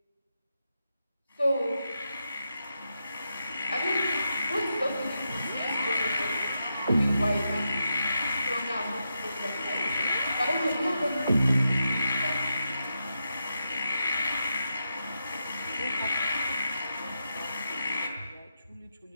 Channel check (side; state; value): both; inverted; correlation -0.85